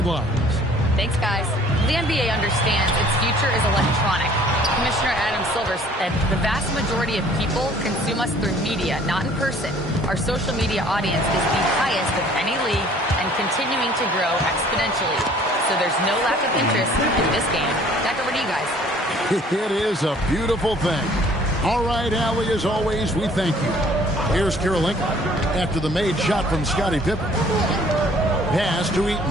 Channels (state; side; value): normal; both; correlation 0.55